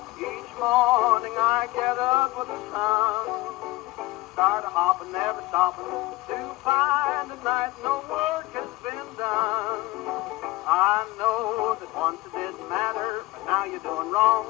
Each morning I get up with the sun, start a hopping, never stopping, to find at night no work has been done. I know that once it didn't matter, but now you're doing wrong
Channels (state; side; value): quieter; right; 19.4 dB